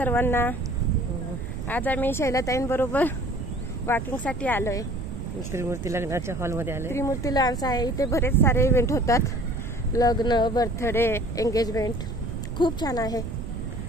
आज आम्ही शैलाताईंबरोबर वॉकिंगसाठी आलोय. त्रिमूर्ती लग्नाच्या हॉलमध्ये आले. त्रिमूर्ती लॉन्स आहे. इथे बरेच सारे इव्हेंट होतात. लग्न, बर्थडे, एंगेजमेंट. खूप छान आहे.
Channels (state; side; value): noise; right; rumble, 6 dB below the sound